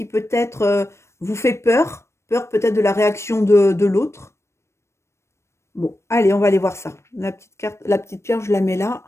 peut-être vous fait peur, peur peut-être de la réaction de l'autre. Bon, allez, on va aller voir ça. La petite carte, la petite pierre, je la mets là.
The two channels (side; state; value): right; late; 0.13 ms